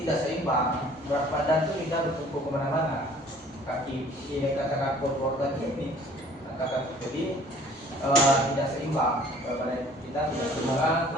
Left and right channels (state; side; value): normal; both; correlation 0.53